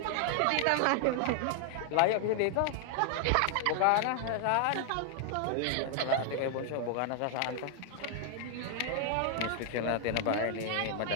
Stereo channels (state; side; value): different; both; correlation 0.00